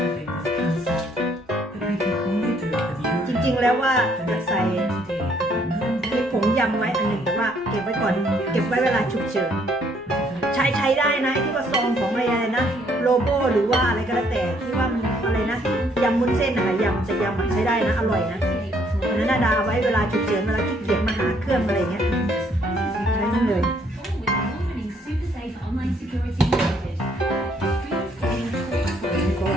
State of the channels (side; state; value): both; normal; correlation 0.67